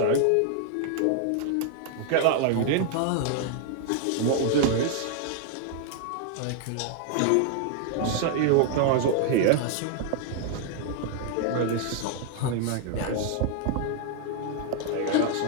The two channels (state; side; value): different; both; correlation 0.00